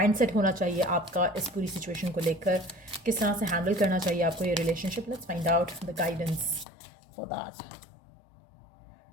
होना चाहिए आपका इस पूरी सिचुएशन को लेकर, किस तरह से हैंडल करना चाहिए आपको ये relationship. Let's find out the guidance for that.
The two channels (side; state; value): right; drops out; at 6.7 s